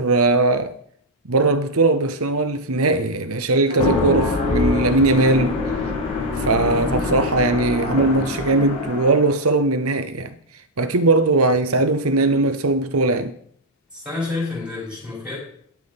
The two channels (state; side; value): normal; both; correlation -0.04